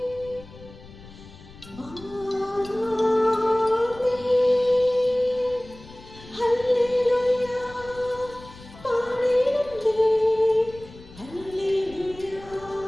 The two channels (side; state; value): left; noise; rumble, 19 dB below the sound